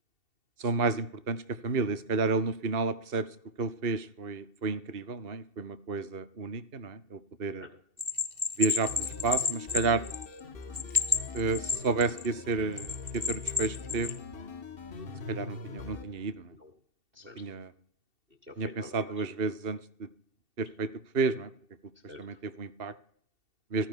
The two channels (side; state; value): left; late; 2.7 ms